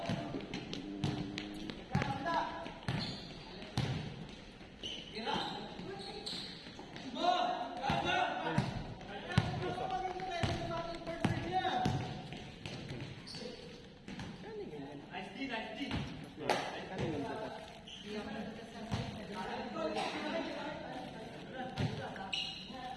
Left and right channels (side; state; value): both; identical; correlation 1.00